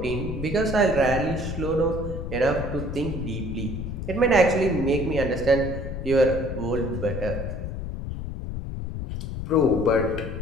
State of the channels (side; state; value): left; noise; rumble, 6 dB below the sound